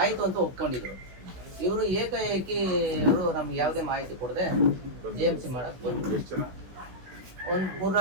ಆಯಿತು ಅಂತ ಒಪ್ಕೊಂಡಿದ್ರು. ಇವರು ಏಕಾಏಕಿ ಇವರು ನಮ್ಗೆ ಯಾವುದೇ ಮಾಹಿತಿ ಕೊಡದೆ JMC ಮಾಡಕ್ಕೆ ಬಂದ್ರು. ಒಂದು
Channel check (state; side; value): late; left; 16 ms